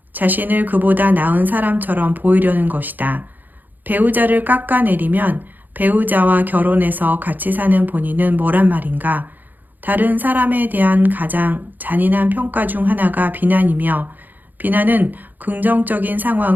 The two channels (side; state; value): left; late; 0.086 ms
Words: 자신을 그보다 나은 사람처럼 보이려는 것이다. 배우자를 깎아내리면 배우자와 결혼해서 같이 사는 본인은 뭐란 말인가? 다른 사람에 대한 가장 잔인한 평가 중 하나가 비난이며 비난은 긍정적인